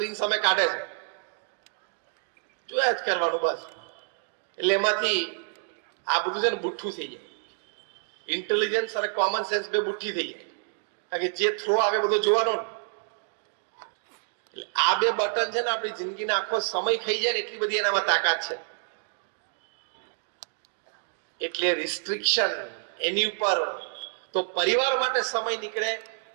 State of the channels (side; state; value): left; silent; digital silence